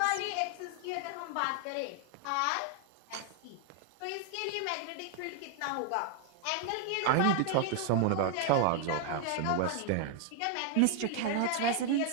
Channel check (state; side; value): different; both; correlation 0.00